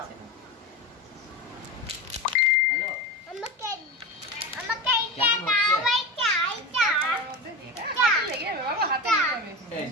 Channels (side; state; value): both; normal; correlation 0.25